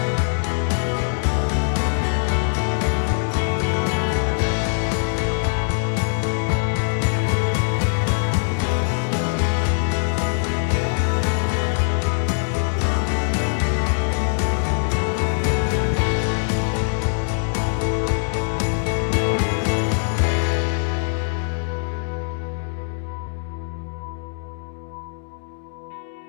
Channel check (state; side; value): silent; right; digital silence